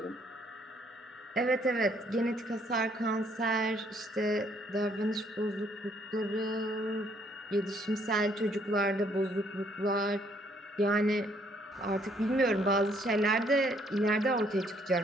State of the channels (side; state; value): both; normal; correlation 0.66